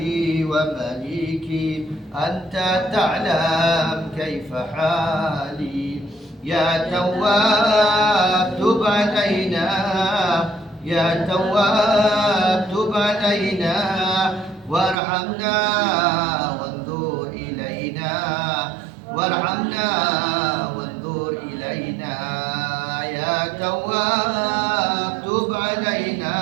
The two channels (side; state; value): left; drops out; at 15.0 s